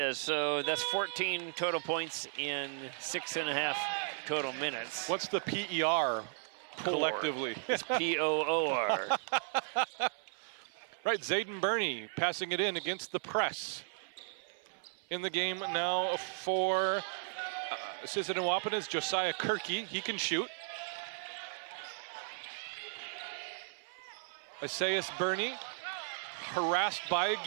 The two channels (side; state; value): left; silent; 54 dB below the other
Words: So that's 14 total points in 6.5 total minutes. What's the PER collectively? It's POOR. Right, Zayden Burney passing it in against the press. In the game now for Sisseton-Wahpeton is Josiah Kirky. He can shoot. Isaias Burney harassed by